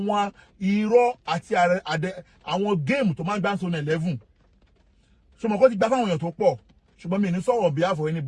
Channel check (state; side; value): identical; both; correlation 1.00